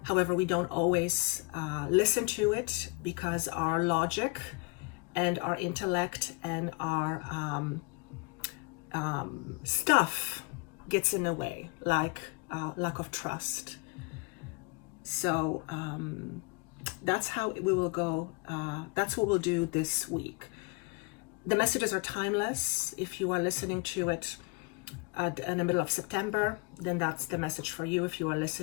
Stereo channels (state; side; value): quieter; right; 28.5 dB